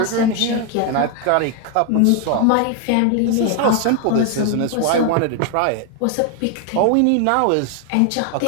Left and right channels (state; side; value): different; both; correlation 0.01